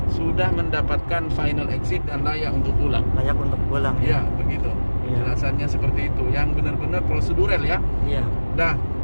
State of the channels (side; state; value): both; inverted; correlation -1.00